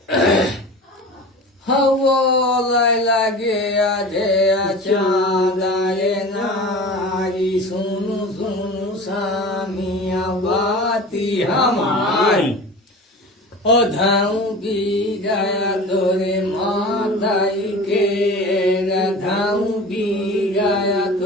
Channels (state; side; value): normal; both; correlation 0.36